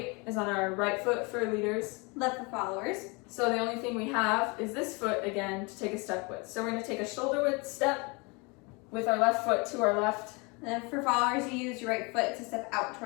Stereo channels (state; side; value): quieter; right; 29.1 dB